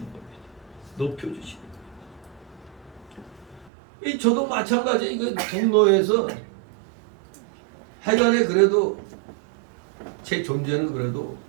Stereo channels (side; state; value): left; drops out; at 3.7 s